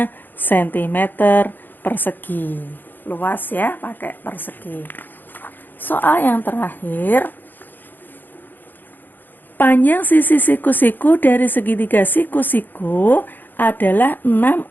sentimeter persegi. Luas ya, pakai persegi. Soal yang terakhir, Panjang sisi siku-siku dari segitiga siku-siku adalah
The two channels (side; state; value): right; late; 0.090 ms